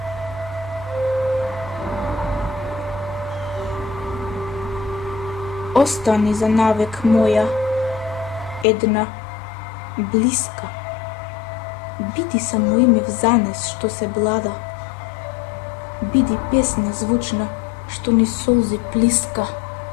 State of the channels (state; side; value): drops out; right; at 8.7 s